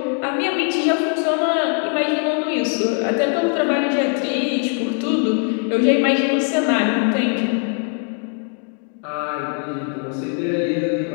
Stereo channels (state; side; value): quieter; right; 39.7 dB